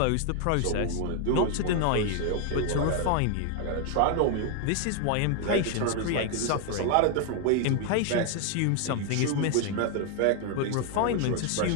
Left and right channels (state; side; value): different; both; correlation 0.01